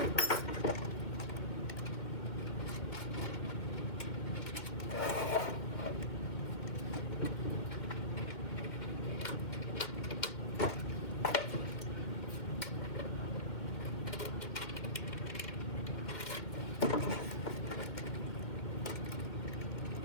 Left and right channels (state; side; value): late; right; 2.1 ms